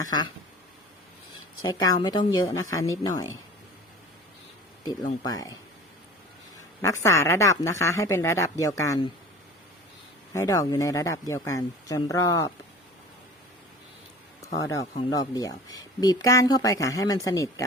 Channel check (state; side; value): normal; both; correlation 0.41